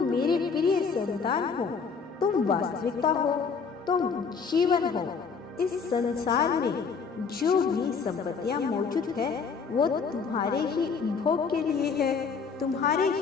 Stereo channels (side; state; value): right; quieter; 5.5 dB